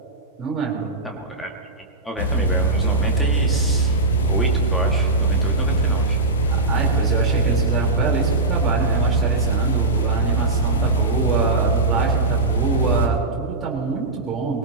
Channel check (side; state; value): left; quieter; 3.1 dB